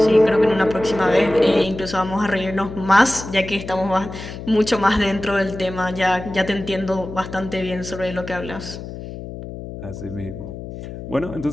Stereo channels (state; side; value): noise; left; hum, 10 dB below the sound